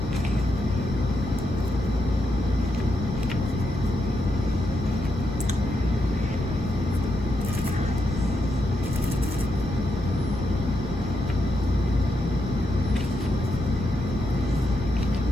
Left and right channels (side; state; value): left; noise; rumble, 10 dB below the sound